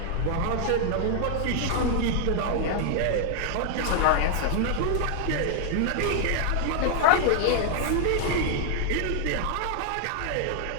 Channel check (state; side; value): different; both; correlation 0.00